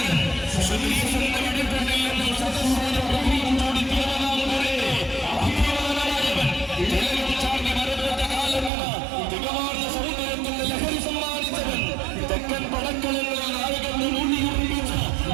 തെക്കൻ പടക്കളങ്ങളിൽ നായകന്റെ മൂല്യം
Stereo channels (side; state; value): left; drops out; at 8.7 s